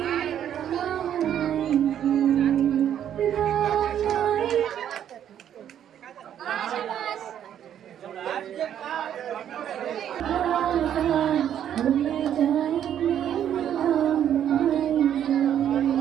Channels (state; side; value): quieter; left; 10.0 dB